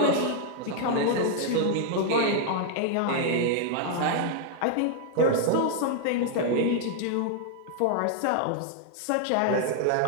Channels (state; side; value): different; both; correlation 0.00